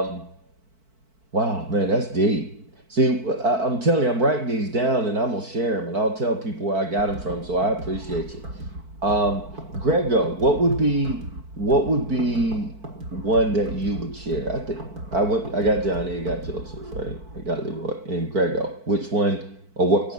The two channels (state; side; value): late; left; 4.5 ms